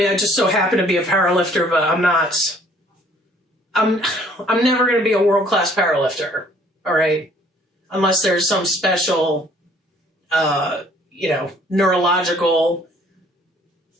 I just so happen to be a powerlifter, but I'm never going to be a world-class powerlifter, all right? Unless there's some special, neurological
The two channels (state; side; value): normal; both; correlation 0.59